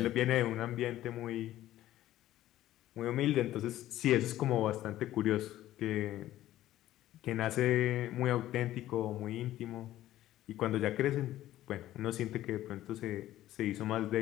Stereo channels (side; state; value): right; quieter; 14.1 dB